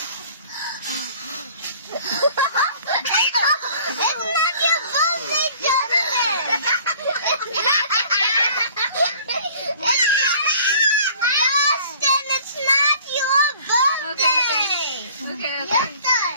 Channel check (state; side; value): inverted; both; correlation -0.51